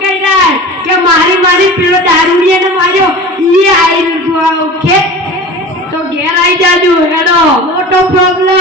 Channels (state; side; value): normal; both; correlation 0.36